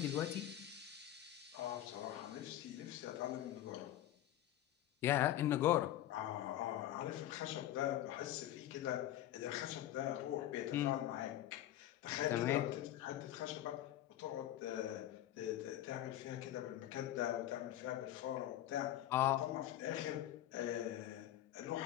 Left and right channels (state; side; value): quieter; right; 13.0 dB